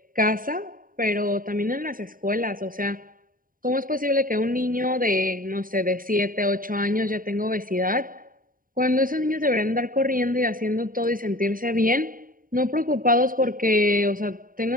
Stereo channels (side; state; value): left; late; 0.41 ms